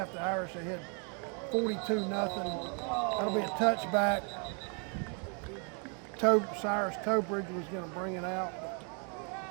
the Irish ahead 42-0. That'll be a touchback. Cyrus Tobridge was going to bring it out.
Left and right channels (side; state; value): left; quieter; 38.4 dB